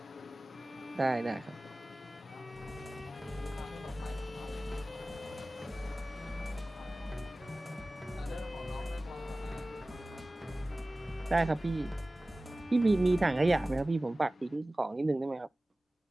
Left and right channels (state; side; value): normal; both; correlation 0.97